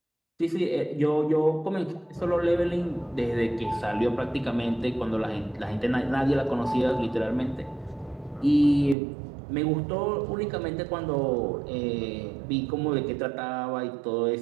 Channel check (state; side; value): drops out; left; at 9.0 s